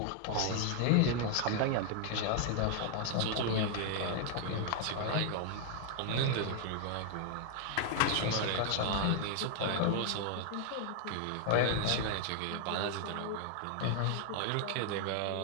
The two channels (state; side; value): different; both; correlation 0.00